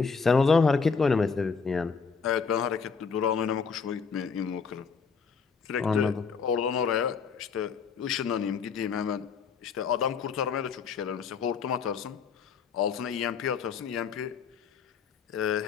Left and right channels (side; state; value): right; quieter; 5.6 dB